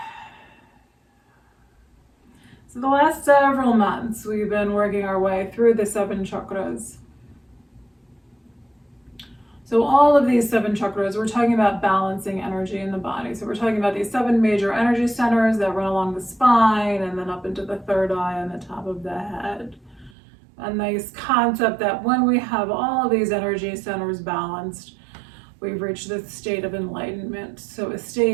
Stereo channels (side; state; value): left; drops out; at 20.1 s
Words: So the last several months, we've been working our way through the 7 chakras. So all of these 7 chakras, we're talking about balancing energy in the body. So we're talking about these 7 major energy centers that run along the spine and then up into the third eye and the top of the head. A nice concept that when we have all of these energy centers balanced, we've reached this state of enlightenment. So a